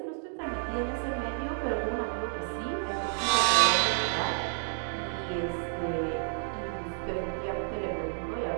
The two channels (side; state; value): left; silent; 57 dB below the other